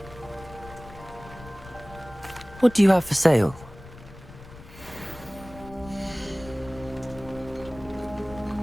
What do you have for sale?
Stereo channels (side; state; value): left; noise; rumble, 18 dB below the sound